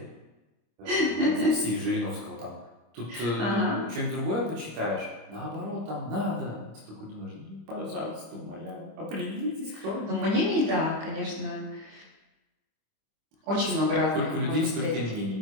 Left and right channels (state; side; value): late; left; 25 ms